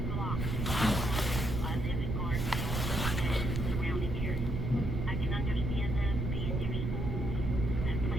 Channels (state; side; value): noise; right; rumble, 1 dB below the sound